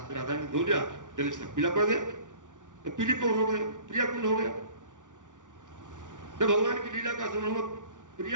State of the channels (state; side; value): late; left; 0.87 ms